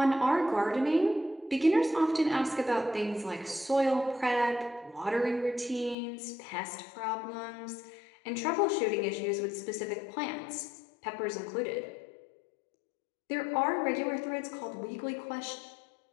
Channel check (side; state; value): right; drops out; at 6.0 s